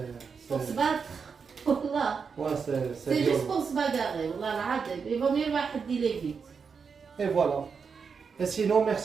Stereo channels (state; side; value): quieter; left; 5.8 dB